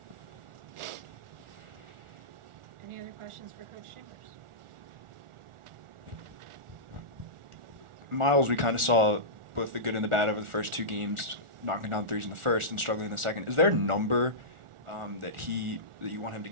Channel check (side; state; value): left; late; 1.4 ms